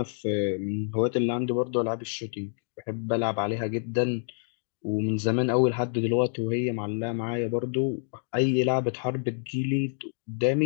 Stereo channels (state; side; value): silent; right; digital silence